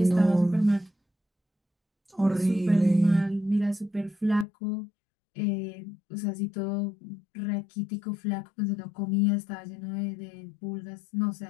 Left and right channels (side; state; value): right; drops out; at 4.5 s